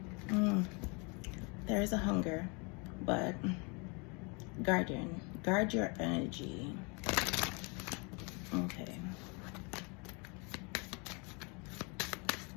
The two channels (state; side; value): quieter; right; 31.7 dB